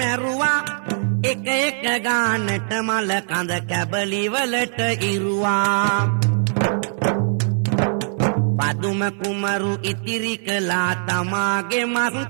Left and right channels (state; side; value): silent; left; digital silence